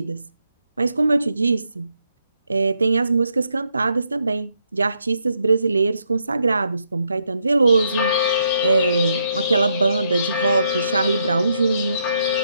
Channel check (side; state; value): both; inverted; correlation -0.77